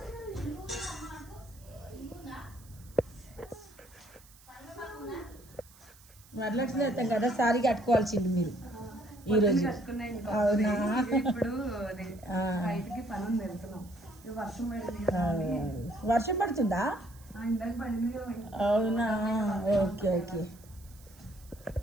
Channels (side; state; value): right; noise; hiss, 24 dB below the sound